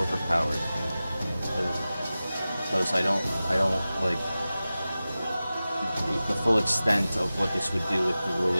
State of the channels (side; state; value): both; inverted; correlation -0.96